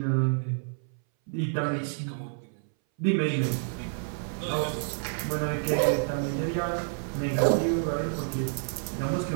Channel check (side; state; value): left; silent; 59 dB below the other